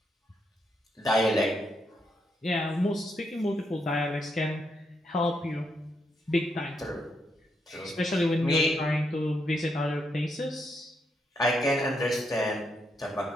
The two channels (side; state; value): both; normal; correlation 0.79